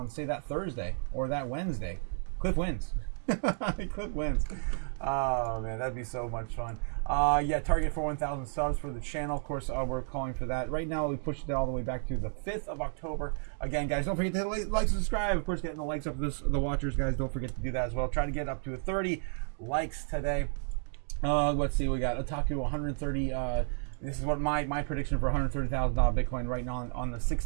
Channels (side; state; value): left; silent; 56 dB below the other